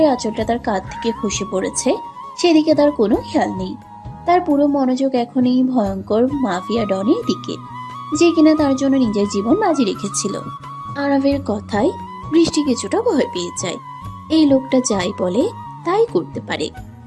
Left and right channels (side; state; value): both; identical; correlation 1.00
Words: আঁচলটা তার কাঁধ থেকে খসে পড়েছে, সেদিকে তার কোনো খেয়াল নেই। তার পুরো মনোযোগ এখন এই ভয়ঙ্কর মাফিয়া ডনের দিকে, যে কিনা তার জন্য নিজের জীবন বাজি রেখেছিল। আরবের কথায় বৃষ্টি কিছুটা ভয় পেয়ে যায়। এই লোকটা যাই বলে তাই করতে পারে।